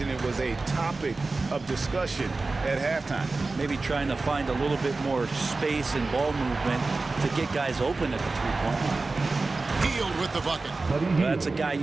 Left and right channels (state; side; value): quieter; left; 3.6 dB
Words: it was a topic of discussion at halftime. Maybe trying to find a little bit more space and ball movement to get guys open at the three-point line. Hield with the bucket. Well, that's a guy